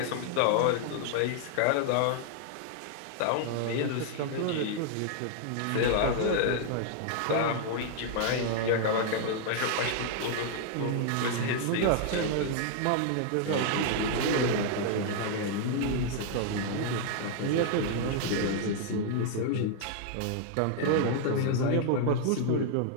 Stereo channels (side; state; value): both; different; correlation 0.00